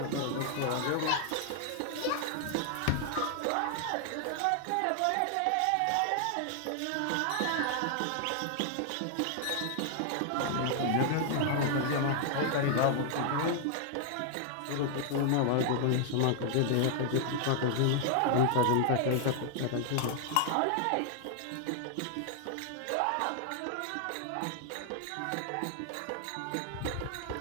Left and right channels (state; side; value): different; both; correlation 0.00